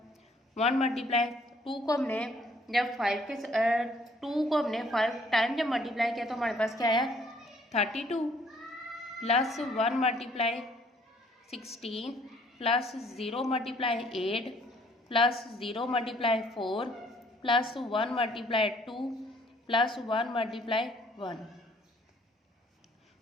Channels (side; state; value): both; normal; correlation 0.62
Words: 1 × 2 को हमने जब 5 के 2 को हमने 5 टाइम जब मल्टीप्लाई किया तो हमारे पास क्या आया 32 plus 1 × 16 plus 0 × 8 plus 0 × 4 plus 1 × 2 plus 1 × 1,